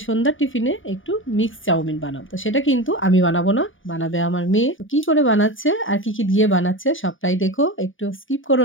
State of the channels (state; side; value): late; right; 0.57 ms